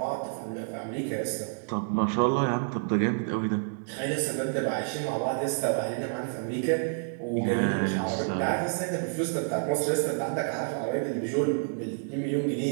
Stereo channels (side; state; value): left; silent; digital silence